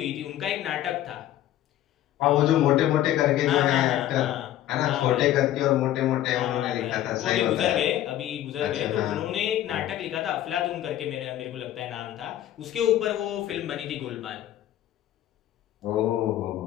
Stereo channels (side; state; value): right; quieter; 12.9 dB